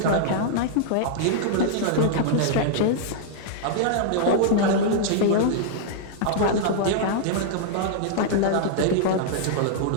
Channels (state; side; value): different; both; correlation -0.01